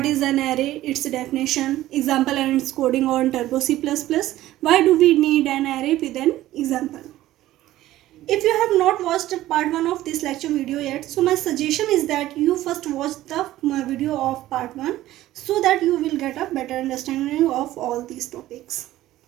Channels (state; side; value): quieter; left; 15.0 dB